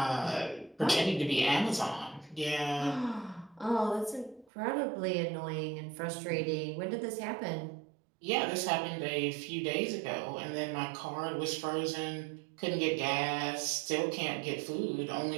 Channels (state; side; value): drops out; left; at 4.5 s